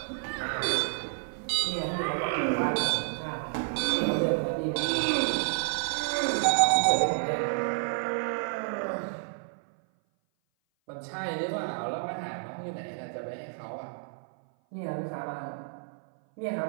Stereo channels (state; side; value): silent; left; 56 dB below the other